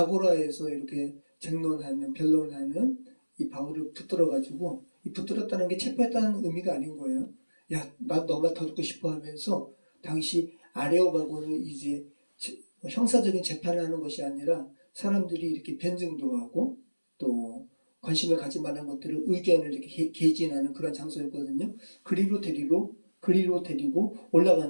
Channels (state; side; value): inverted; both; correlation -1.00